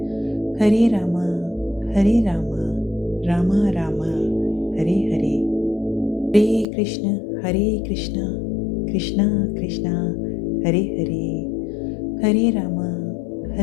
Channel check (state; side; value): drops out; right; at 6.7 s